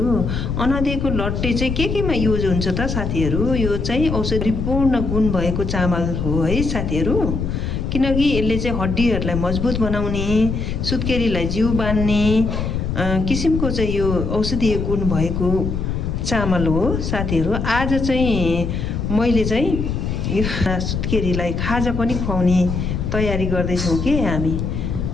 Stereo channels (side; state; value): left; noise; rumble, 2 dB below the sound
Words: अनदीको लट्टे चाहिँ केमा युज हुन्छ त साथीहरू? यो चाहिँ औषधिपूर्ण गुण भएको चामल हो है साथीहरू। किनकि यसले चाहिँ हड्डीहरूलाई मजबुत बनाउने, सुत्केरीलाई जिउ बान्ने किसिमको चाहिँ यो औषधीय गुण भएको चामल हो साथीहरू। आज चाहिँ मैले चाहिँ यो सुत्केरीलाई खाजा पनि खुवाउने तयारी गर्दैछौँ कि हामी।